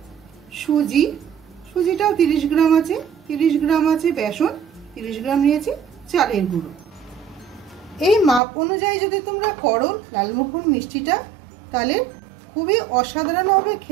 সুজিটাও 30 গ্রাম আছে, 30 গ্রাম আছে বেসন, 30 গ্রাম নিয়েছি চালের গুঁড়ো। এই মাপ অনুযায়ী যদি তোমরা করো লালমোহন মিষ্টিটা তাহলে খুবই অসাধারণ হবে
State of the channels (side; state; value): left; drops out; at 8.4 s